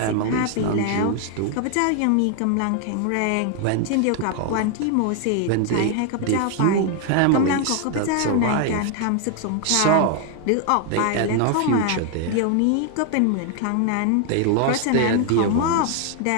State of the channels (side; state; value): both; different; correlation 0.00